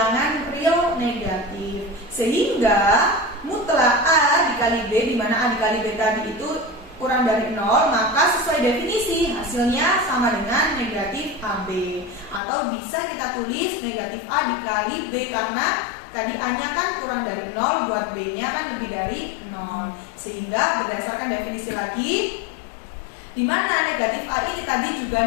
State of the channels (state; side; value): drops out; right; at 12.4 s